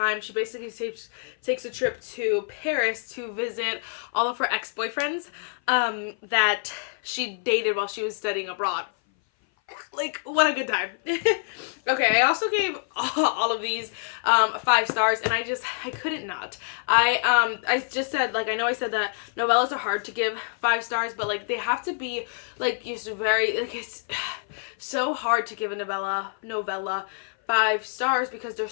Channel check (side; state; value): right; silent; 57 dB below the other